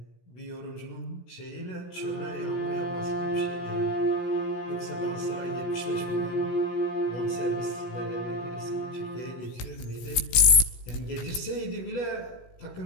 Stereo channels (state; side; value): late; right; 17 ms